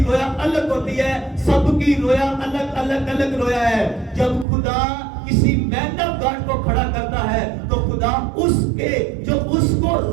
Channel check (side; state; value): left; drops out; at 4.5 s